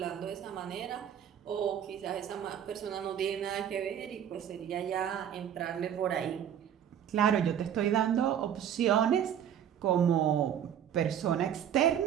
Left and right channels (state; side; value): quieter; left; 9.5 dB